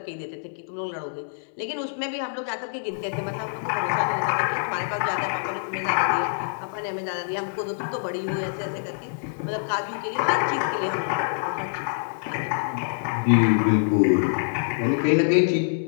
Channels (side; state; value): right; silent; 61 dB below the other